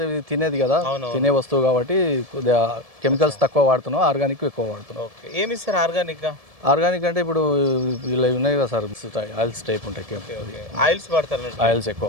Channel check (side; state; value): left; late; 1.7 ms